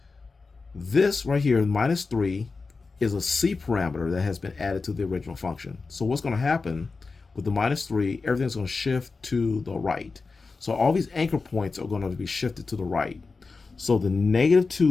this right here, -3, is a c parameter that has been added to the original function. So what's going to happen with the -3, everything's going to shift to the right. So all these anchor points are going to be shifted to the right. So the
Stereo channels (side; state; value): right; quieter; 4.2 dB